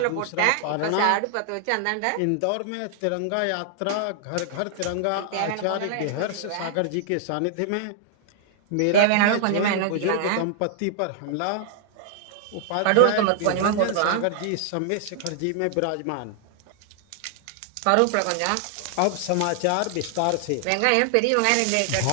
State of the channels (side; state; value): both; different; correlation 0.00